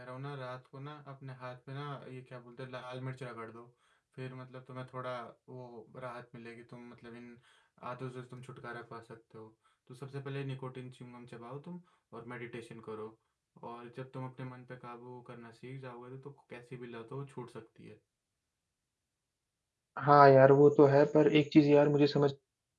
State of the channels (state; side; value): identical; both; correlation 1.00